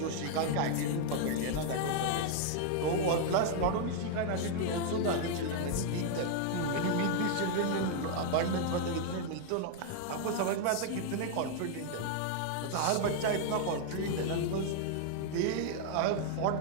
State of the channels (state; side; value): different; both; correlation -0.01